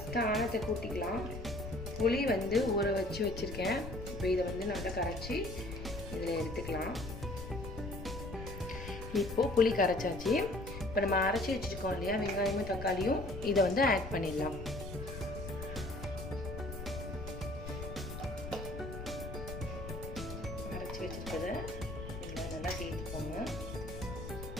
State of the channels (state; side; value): noise; left; rumble, 9 dB below the sound